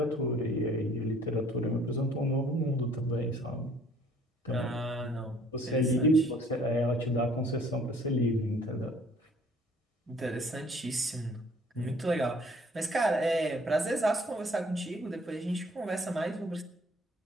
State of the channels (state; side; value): normal; both; correlation 0.57